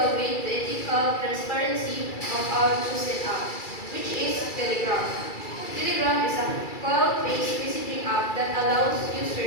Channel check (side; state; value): right; late; 2.3 ms